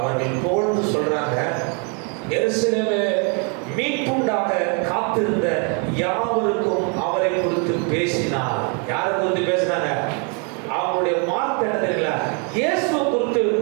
போல்னு சொல்றாங்க, எருசலேமே மீட்புண்டாக காத்திருந்த யாவருக்கும் அவரை குறித்து பேசினார். யாரை குறித்து பேசினாங்க? அவங்களுடைய வார்த்தை என்ன தெரியல, இயேசுவை குறித்து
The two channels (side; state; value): left; quieter; 37.0 dB